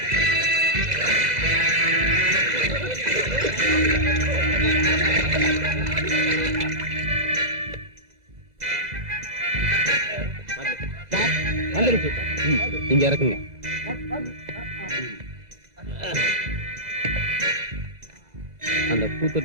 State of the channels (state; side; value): late; left; 2.0 ms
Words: இங்க இறக்குங்க. அந்த